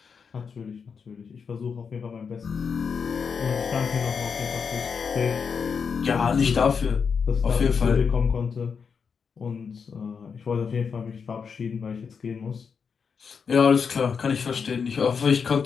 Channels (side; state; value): right; quieter; 6.1 dB